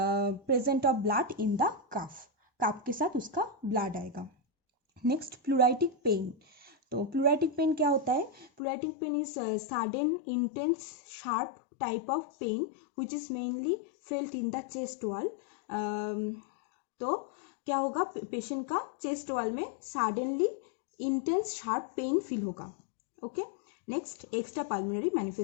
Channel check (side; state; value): right; drops out; at 8.5 s